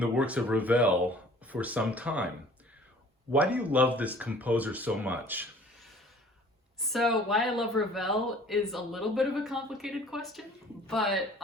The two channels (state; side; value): normal; both; correlation 0.50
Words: works of Ravel for some time. Why do you love this composer so much? So why I love Ravel is a little bit of a complicated question, but